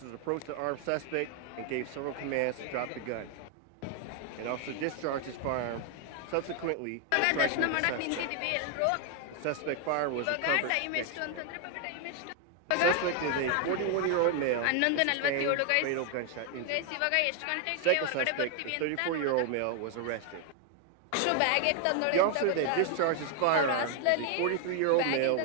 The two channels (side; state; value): both; different; correlation 0.00